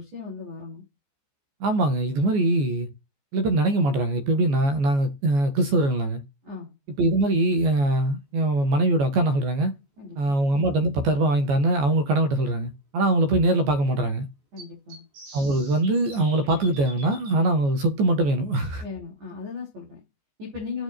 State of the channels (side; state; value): left; late; 14 ms